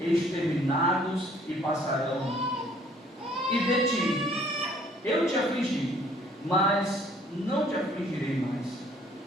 e passarão. E de ti eu te afligi, mas não te afligirei mais.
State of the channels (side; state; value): both; normal; correlation 0.59